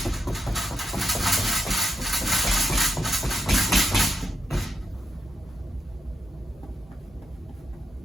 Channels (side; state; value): both; normal; correlation 0.82